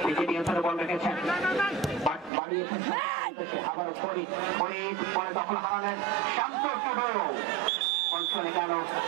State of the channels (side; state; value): left; drops out; at 2.3 s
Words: নিজে নিয়ন্ত্রণে বল রেখেছেন, বাড়িয়েছেন আবার ফরিদ পরে দখল হারালেন শান্ত অঞ্চলে গেল